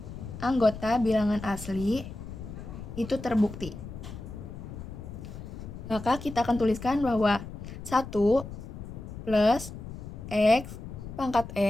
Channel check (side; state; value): left; noise; rumble, 11 dB below the sound